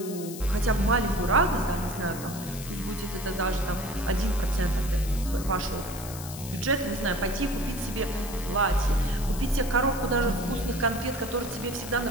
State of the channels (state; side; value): noise; left; hiss, 12 dB below the sound